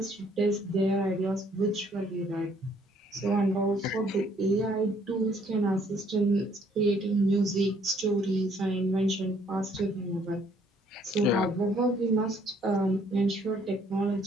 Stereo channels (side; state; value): both; normal; correlation 0.64